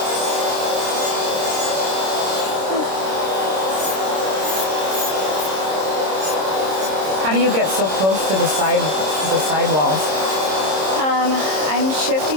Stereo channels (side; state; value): left; late; 26 ms